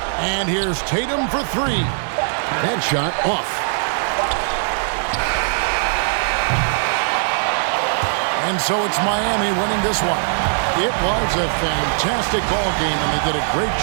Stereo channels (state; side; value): silent; left; 59 dB below the other